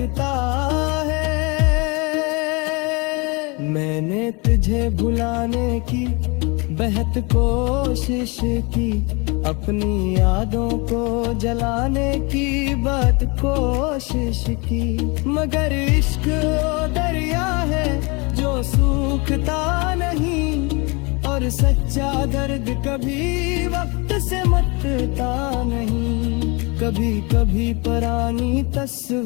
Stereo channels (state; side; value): quieter; right; 28.9 dB